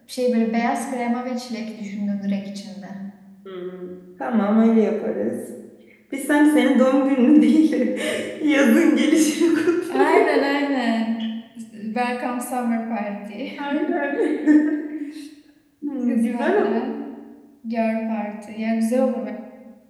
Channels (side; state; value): both; identical; correlation 1.00